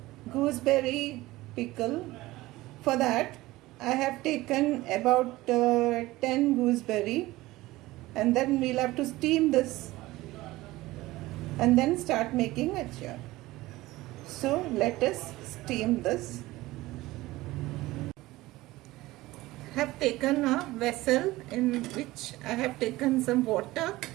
gooseberry pickle. For that I have taken about 10 gooseberry, and then we'll have to steam this and then start making achar. So let us steam this. I have taken a vessel in which I have taken some water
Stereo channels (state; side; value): quieter; left; 18.5 dB